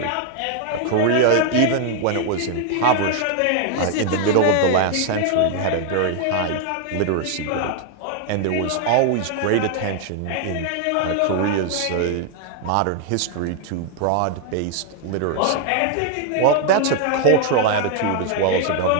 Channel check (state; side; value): different; both; correlation 0.00